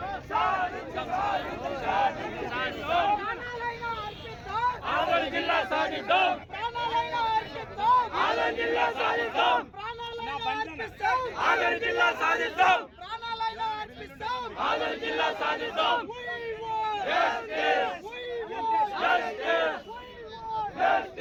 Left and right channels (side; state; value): both; identical; correlation 1.00